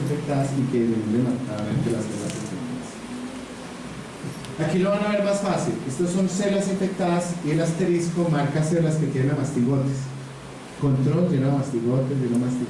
y que deben marcadamente las células infectadas. Aquí lo van a ver más fácil. Estos son células infectadas y el asterisco marca células que tienen amastigotes. Control lleno de mastigotes, lleno de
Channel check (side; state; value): both; identical; correlation 1.00